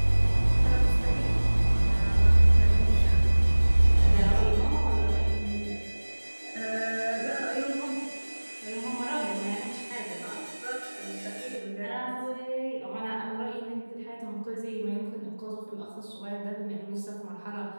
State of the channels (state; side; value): inverted; both; correlation -1.00